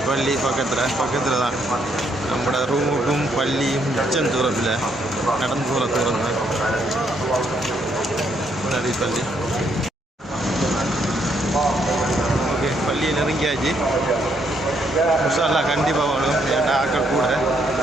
பள்ளி பக்கத்தில் தான். நம்மளோட ரூமுக்கும் பள்ளியும் மிச்சம் தூரத்தில் நடந்து போகிற தூரம் தான் நிறைய பள்ளி. ஓகே, பள்ளியை நெருங்கியாச்சு. முசாலா கண்டிப்பாக வரும். ஏன்னா ஆக்கள் கூட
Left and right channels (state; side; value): normal; both; correlation 0.73